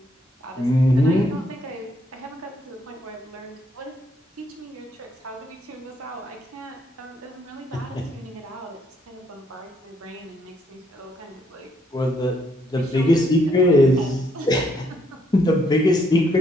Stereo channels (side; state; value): both; normal; correlation 0.71